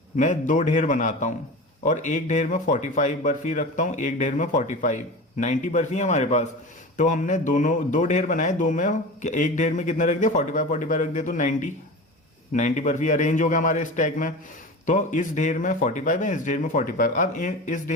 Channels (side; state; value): both; normal; correlation 0.31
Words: मैं 2 ढेर बनाता हूं और एक ढेर में 45 बर्फी रखता हूं, एक ढेर में 45, 90 बर्फी है हमारे पास। तो हमने दोनों 2 ढेर बनाए, 2 में एक ढेर में कितना रख दिया 45 रख दिया, तो 90 बर्फी अरेंज हो गया हमारे स्टैक में। तो इस ढेर में 45 है, इस ढेर में 45, अब इस